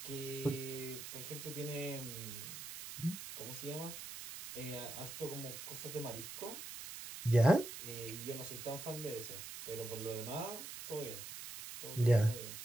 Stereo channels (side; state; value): right; noise; hiss, 9 dB below the sound